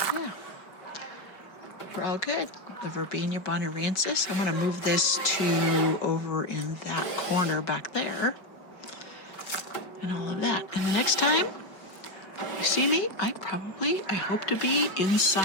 yeah. We're all good. The Verbena bonariensis. I'm going to move this to over in that corner back there. And all of that. And the next time you see me, I hope to be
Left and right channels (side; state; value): right; late; 4.9 ms